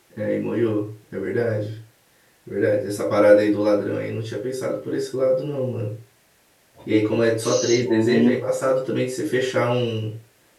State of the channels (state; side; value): identical; both; correlation 1.00